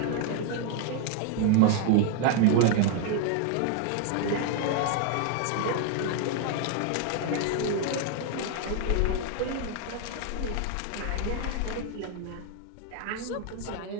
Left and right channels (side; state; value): both; different; correlation 0.00